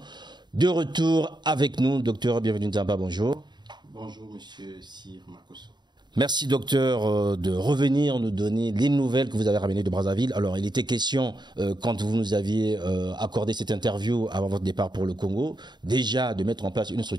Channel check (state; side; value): late; left; 0.21 ms